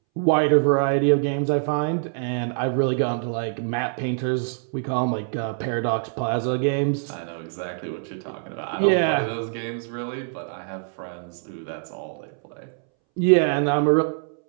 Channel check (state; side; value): silent; left; 62 dB below the other